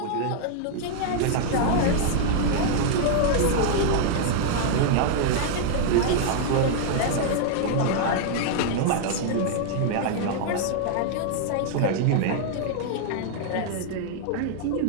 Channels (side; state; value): both; different; correlation -0.01